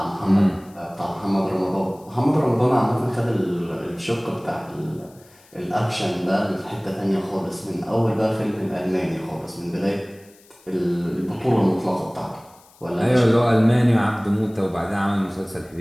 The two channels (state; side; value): noise; left; hiss, 28 dB below the sound